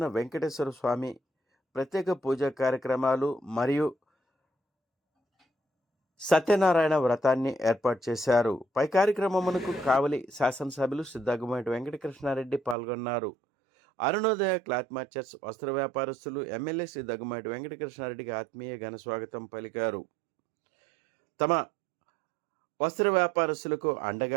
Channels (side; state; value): left; drops out; at 12.8 s